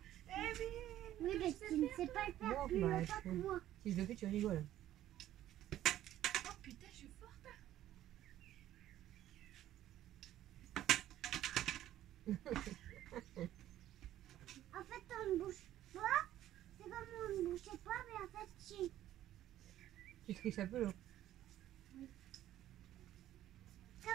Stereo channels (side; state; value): left; quieter; 13.0 dB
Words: bien, Oui, mais tu ne sais pas le faire Non, plus bah, longtemps que moi. Si je le fais, tu rigoles. oh putain, je suis forte. En fait, on ne bouge pas. C'est comme on ne bougeait pas, mais en fait, si. Tu triches un peu là.